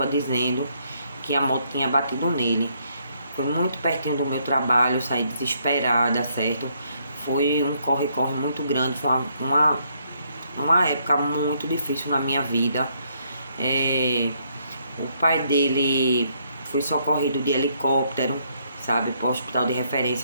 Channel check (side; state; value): both; inverted; correlation -0.72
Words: dizendo que a moto tinha batido nele. Foi muito pertinho do meu trabalho, saí desesperada, certo? Foi um corre-corre muito grande, foi uma época muito difícil na minha vida. O pai dele foi socorrido de helicóptero, sabe, para o hospital de